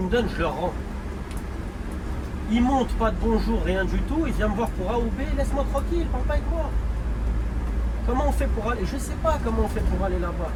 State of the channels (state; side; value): identical; both; correlation 1.00